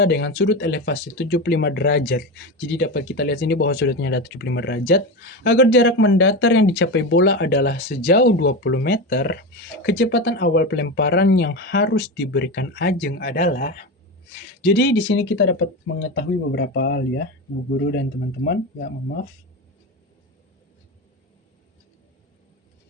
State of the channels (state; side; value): normal; both; correlation 0.20